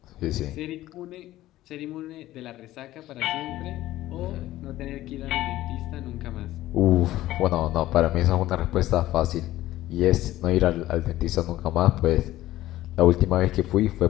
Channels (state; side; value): quieter; right; 15.3 dB